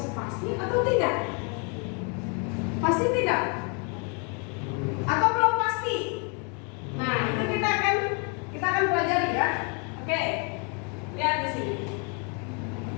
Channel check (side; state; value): right; quieter; 36.1 dB